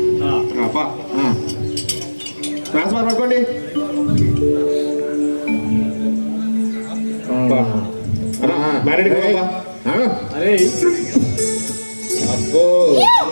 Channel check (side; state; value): both; inverted; correlation -1.00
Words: ట్రాన్స్ఫర్ పట్టుకోండి. మ్యారేడ్ అరే అబ్బో